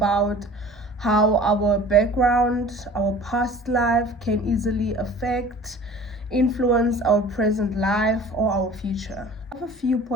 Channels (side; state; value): both; normal; correlation 0.44